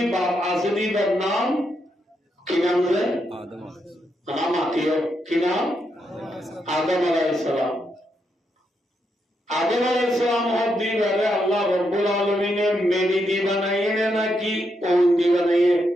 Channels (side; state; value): both; normal; correlation 0.81